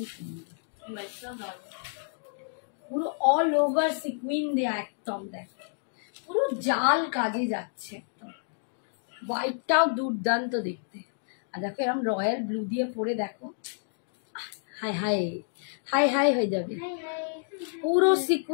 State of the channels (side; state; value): right; silent; digital silence